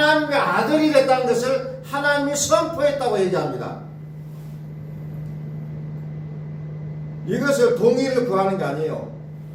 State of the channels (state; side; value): identical; both; correlation 1.00